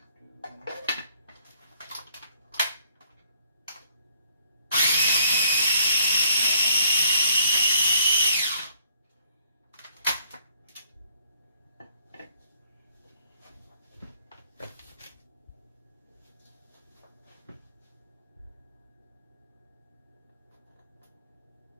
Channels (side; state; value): both; inverted; correlation -0.66